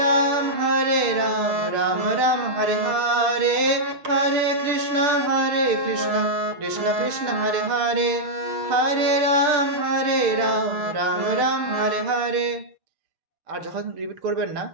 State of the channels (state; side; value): late; left; 6.8 ms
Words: রাম রাম রাম হরে হরে, হরে কৃষ্ণ কৃষ্ণ হরে হরে, হরে রাম রাম রাম হরে হরে। আর যখন রিপিট করবেন না